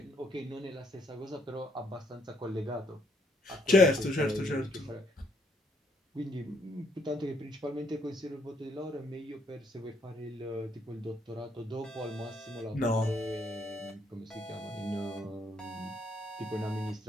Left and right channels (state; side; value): normal; both; correlation 0.70